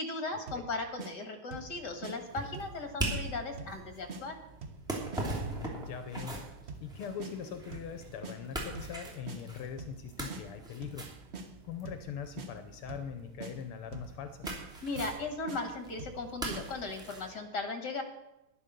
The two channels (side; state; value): both; normal; correlation 0.06